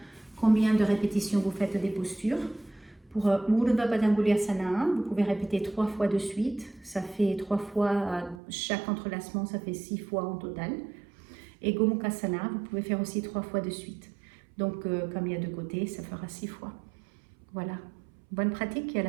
combien de répétitions vous faites des postures. Pour Urdhva Padangusthasana, vous pouvez répéter 3 fois de suite. Ça fait 3 fois à chaque entrelacement, ça fait 6 fois en total. Et Gomukhasana, vous pouvez faire aussi 3 fois de suite. Donc, comme il y a 2 côtés, ça fera 6 fois. Voilà. Bonne pratique et à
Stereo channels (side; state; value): left; drops out; at 8.4 s